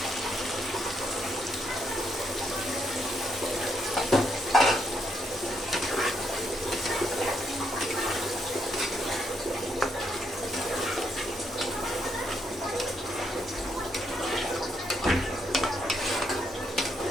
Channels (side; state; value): both; normal; correlation 0.76